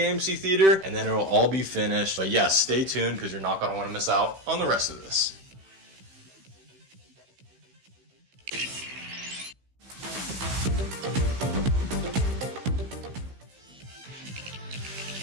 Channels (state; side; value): late; left; 15 ms